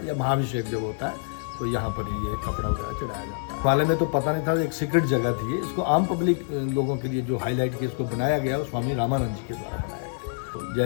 या महाभिषेक जब होता है तो यहाँ पर ये कपड़ा वगैरह चढ़ाया जाता है। वाले में तो पता नहीं था, एक सीक्रेट जगह थी, इसको आम पब्लिक लोगों के लिए जो हाईलाइट के इसको बनाया गया वो स्वामी रामानंद जी के द्वारा बनाया गया। तो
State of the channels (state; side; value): silent; right; digital silence